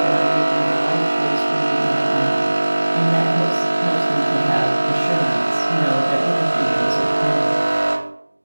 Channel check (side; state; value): both; inverted; correlation -1.00